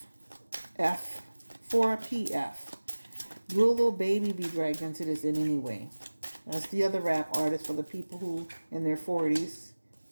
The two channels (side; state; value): both; inverted; correlation -1.00